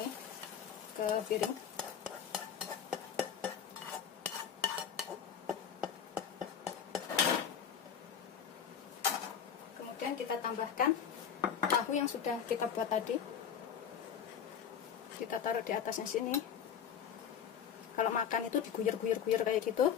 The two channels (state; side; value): quieter; right; 8.2 dB